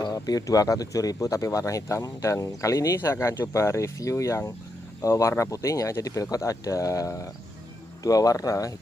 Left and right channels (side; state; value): both; normal; correlation 0.82